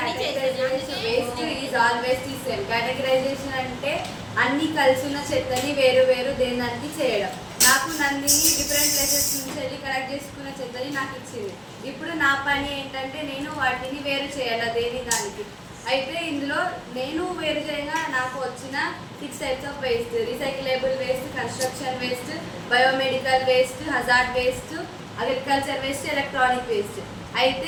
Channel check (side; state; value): both; identical; correlation 1.00